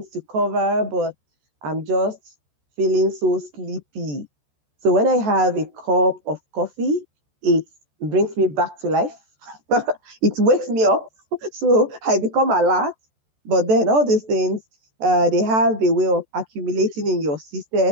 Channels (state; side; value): late; left; 14 ms